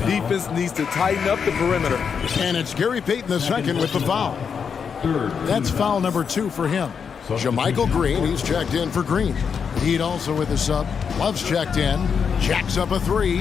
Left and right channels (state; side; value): quieter; right; 6.6 dB